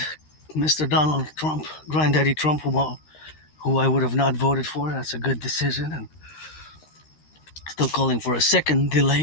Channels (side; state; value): right; late; 13 ms